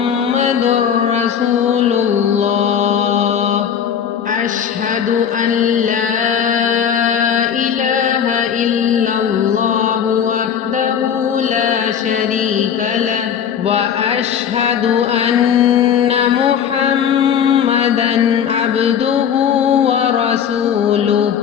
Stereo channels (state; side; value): quieter; right; 8.2 dB